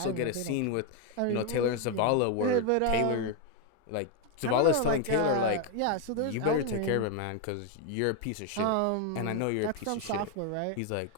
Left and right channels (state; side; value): different; both; correlation 0.01